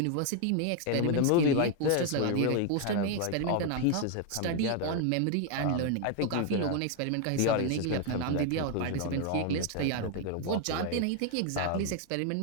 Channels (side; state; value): both; different; correlation 0.01